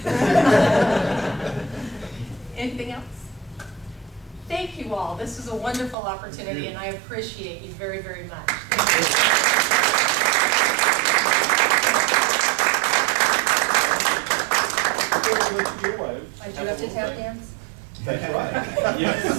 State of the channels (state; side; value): drops out; left; at 6.0 s